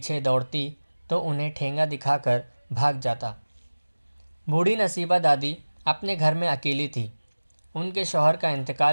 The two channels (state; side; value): inverted; both; correlation -1.00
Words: دوڑتی تو انہیں ٹھینگا دکھا کر بھاگ جاتا۔ بوڑھی نصیبہ دادی اپنے گھر میں اکیلی تھی۔ ان کے شوہر کا